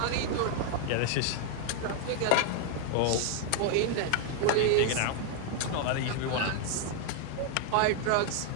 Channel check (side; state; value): both; different; correlation 0.00